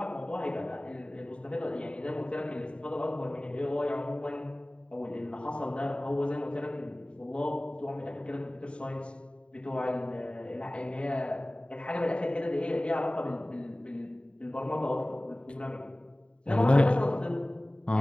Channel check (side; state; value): right; late; 0.055 ms